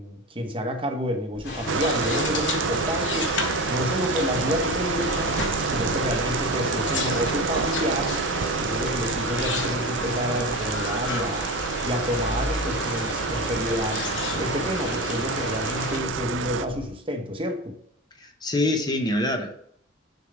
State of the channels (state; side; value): normal; both; correlation 0.25